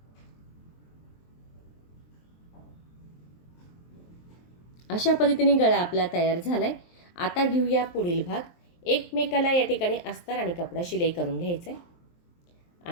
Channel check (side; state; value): right; late; 23 ms